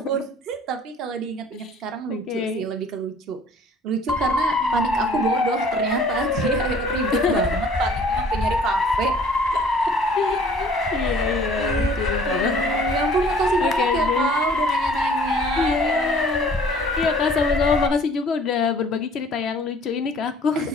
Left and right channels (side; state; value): both; normal; correlation 0.53